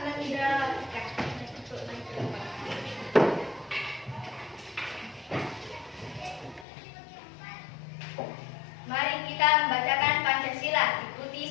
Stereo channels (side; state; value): right; drops out; at 6.7 s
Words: Mari kita membacakan Pancasila. Ikuti